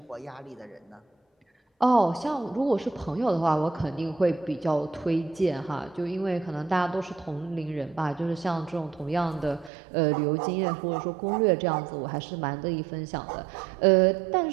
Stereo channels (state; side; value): drops out; left; at 9.7 s